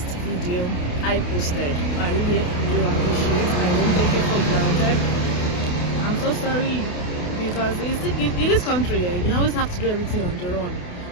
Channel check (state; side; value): late; right; 28 ms